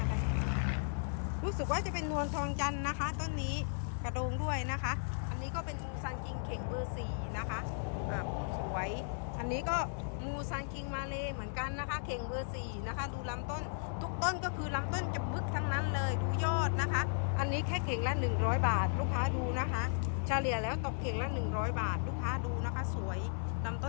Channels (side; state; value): right; silent; digital silence